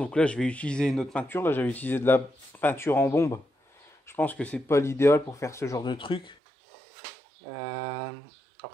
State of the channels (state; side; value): drops out; left; at 6.4 s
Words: là, je vais utiliser une autre peinture. Là, j'avais utilisé de la peinture en bombe. Je pense que c'est pas l'idéal pour faire ce genre de truc.